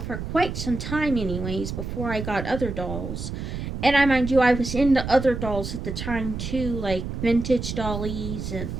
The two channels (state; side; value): noise; right; rumble, 5 dB below the sound